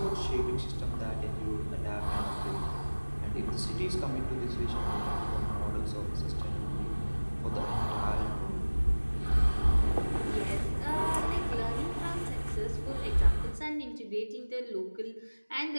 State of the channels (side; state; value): both; inverted; correlation -1.00